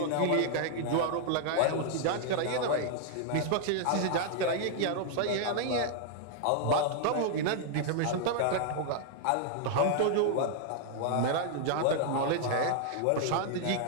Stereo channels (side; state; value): both; different; correlation 0.00